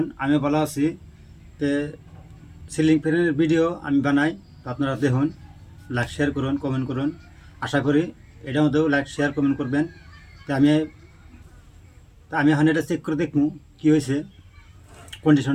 আমি ভালো আছি। তো সিলিং ফ্যানের ভিডিও আমি বানাই, তো আপনারা দেখুন, লাইক শেয়ার করুন, কমেন্ট করুন। আশা করি এটার মধ্যেও লাইক শেয়ার কমেন্ট করবেন। তো আমি এখন এটা চেক করে দেখবো কী হয়েছে,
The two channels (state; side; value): identical; both; correlation 1.00